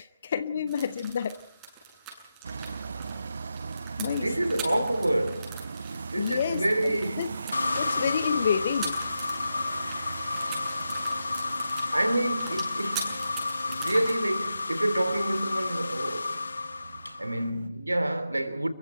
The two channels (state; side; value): inverted; both; correlation -0.88